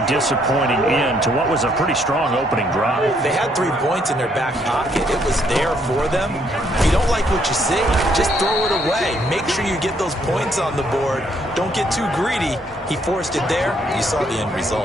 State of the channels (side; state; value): both; normal; correlation 0.70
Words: disappointing end to what was a pretty strong opening drive. They had 3 points in their back pocket. It was there for them. If you don't like what you see, just throw it away. Make sure you get those points on the board. Don't get too greedy. He forced it there. You saw the end